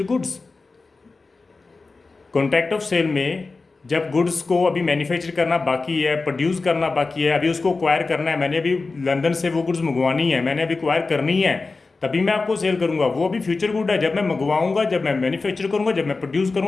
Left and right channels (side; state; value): right; quieter; 3.9 dB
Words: goods. Contract of sale में जब गुड्स को अभी मैन्युफैक्चर करना बाकी है, प्रोड्यूस करना बाकी है, अभी उसको एक्वायर करना है, मैंने अभी लंदन से वो गुड्स मंगवानी है, मैंने अभी एक्वायर करनी है, तभी मैं आपको सेल करूंगा, वो अभी फ्यूचर गुड है। जब मैं मंगवाऊंगा, जब मैं मैन्युफैक्चर करूंगा, जब मैं प्रोड्यूस